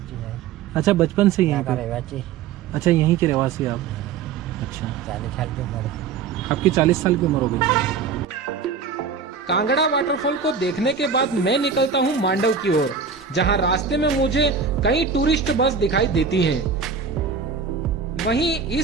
अच्छा, बचपन से यहाँ पे? अच्छा, यहीं के रहवासी आप? अच्छा, 40 साल की उम्र। आपकी 40 साल की उम्र हो गई। कांगड़ा वाटरफॉल को देखने के बाद मैं निकलता हूँ मांडव की ओर, जहाँ रास्ते में मुझे कई टूरिस्ट बस दिखाई देती हैं। वहीं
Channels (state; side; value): quieter; left; 5.9 dB